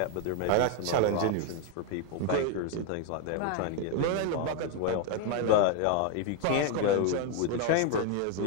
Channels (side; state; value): both; different; correlation 0.01